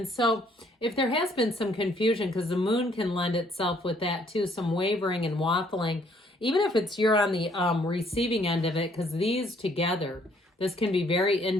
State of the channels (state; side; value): normal; both; correlation 0.64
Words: so if there has been some confusion, because the Moon can lend itself with that, too, some wavering and waffling, even if it's you're on the receiving end of it, because these together, this can be very